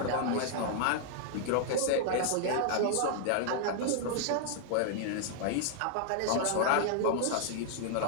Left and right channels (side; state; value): both; different; correlation -0.01